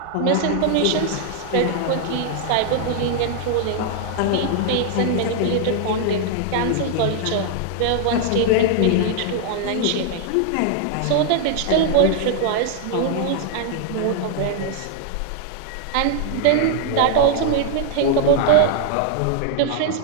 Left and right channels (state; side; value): different; both; correlation 0.00